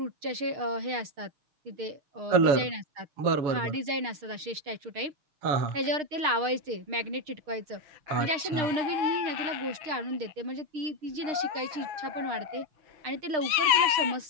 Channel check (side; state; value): left; late; 6.5 ms